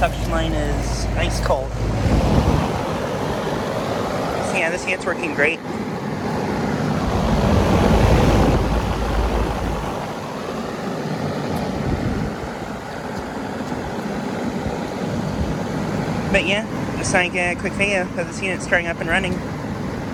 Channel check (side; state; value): both; identical; correlation 1.00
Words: line is ice cold. So yeah, this unit's working great. But yeah, just like a quick video of this unit starting up and running.